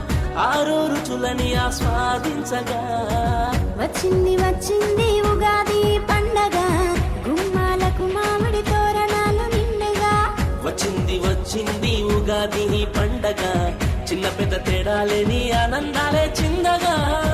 ఆరు రుచులని ఆస్వాదించగా వచ్చింది వచ్చింది ఉగాది పండగ, గుమ్మాలకు మామిడి తోరణాలు నిండుగా. వచ్చింది వచ్చింది ఉగాది పండగ, చిన్న పెద్ద తేడాలేని ఆనందాలే చిందగా.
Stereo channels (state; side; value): identical; both; correlation 1.00